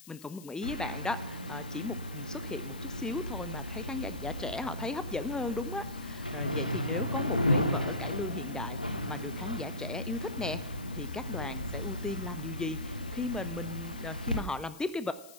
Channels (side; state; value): left; noise; hiss, 18 dB below the sound